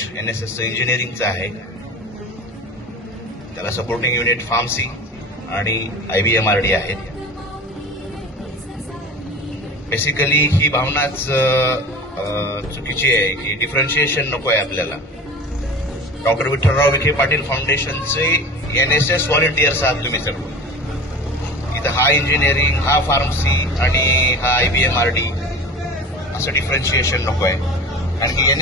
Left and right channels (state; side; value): normal; both; correlation 0.36